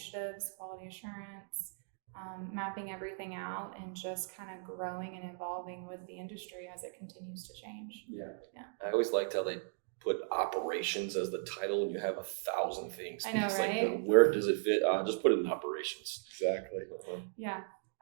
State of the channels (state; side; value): silent; left; digital silence